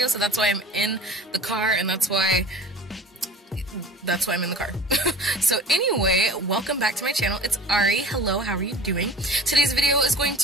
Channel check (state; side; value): normal; both; correlation 0.41